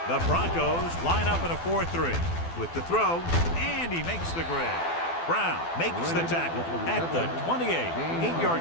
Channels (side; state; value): right; late; 12 ms